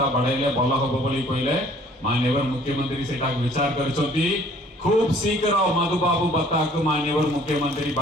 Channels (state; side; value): normal; both; correlation 0.56